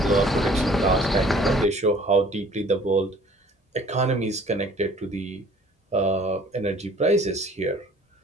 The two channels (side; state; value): both; normal; correlation 0.53